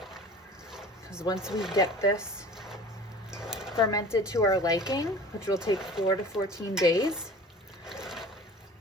Because once we get this fermented to our liking, which will take 4 to 14 days,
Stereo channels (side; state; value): both; normal; correlation 0.41